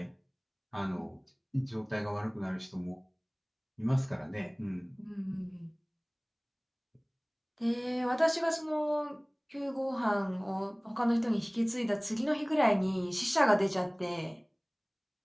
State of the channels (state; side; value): identical; both; correlation 1.00